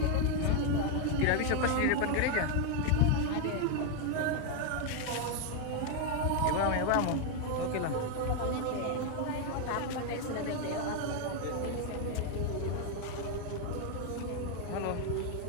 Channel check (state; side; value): different; both; correlation 0.01